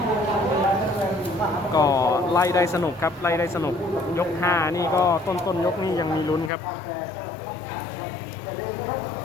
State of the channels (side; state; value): right; drops out; at 6.5 s